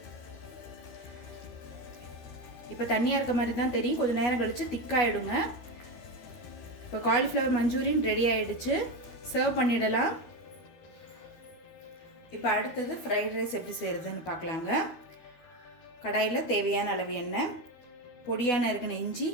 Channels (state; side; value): late; right; 13 ms